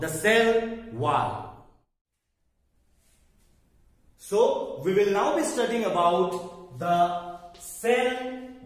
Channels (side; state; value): both; identical; correlation 1.00